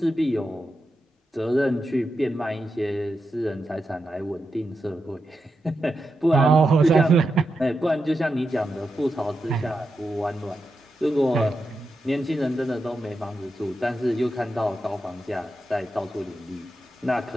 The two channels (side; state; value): both; normal; correlation 0.87